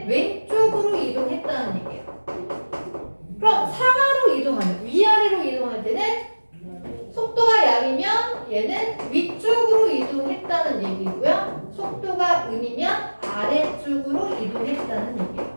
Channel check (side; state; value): both; inverted; correlation -1.00